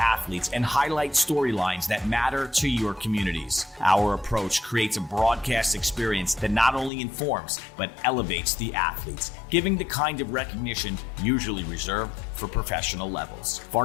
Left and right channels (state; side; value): drops out; right; at 6.9 s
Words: and highlight storylines that matter to your communities. Our approach creates a broadcast experience that not only informs, but elevates the athletes, giving the kind of recognition usually reserved for professional levels.